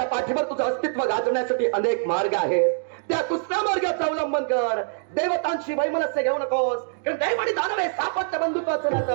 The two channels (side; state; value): left; silent; 62 dB below the other